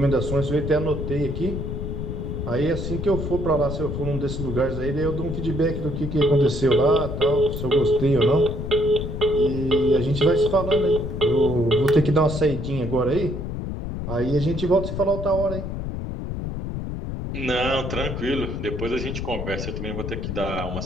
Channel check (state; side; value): noise; left; rumble, 5 dB below the sound